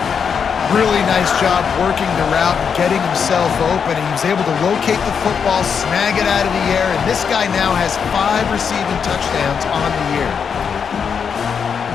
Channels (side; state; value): right; quieter; 6.7 dB